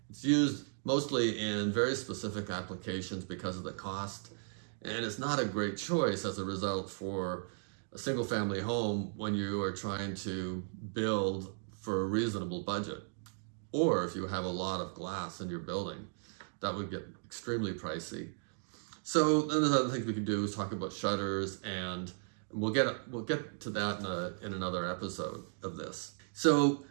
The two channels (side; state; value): left; silent; digital silence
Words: It's used mostly in very specific applications because of the cost, and it's not a great choice as a result for a single-family home when you are trying to build for a reasonable budget. Or if you have a lot of glass in your building, that would get extremely pricey. So then there's other things we can do is talk about shutters, and we'll get to that in another episode of this. So